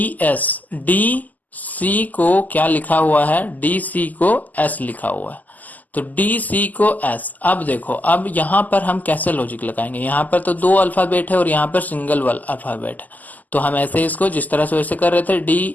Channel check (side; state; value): right; late; 0.081 ms